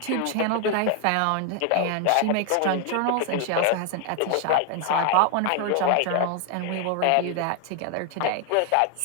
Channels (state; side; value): different; both; correlation 0.00